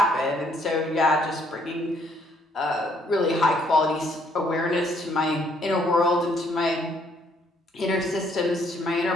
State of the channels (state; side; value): normal; both; correlation 0.67